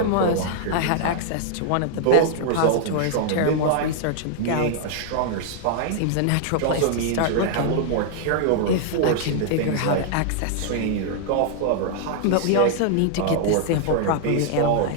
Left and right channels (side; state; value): both; different; correlation -0.01